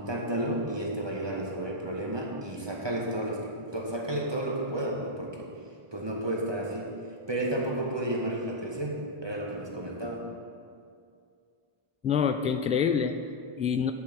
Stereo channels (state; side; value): late; left; 1.2 ms